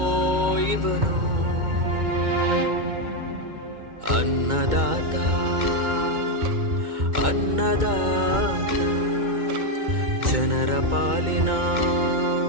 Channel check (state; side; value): late; left; 2.2 ms